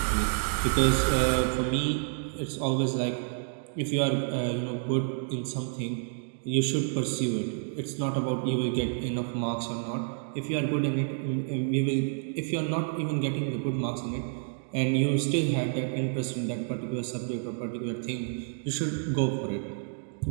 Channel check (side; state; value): left; silent; digital silence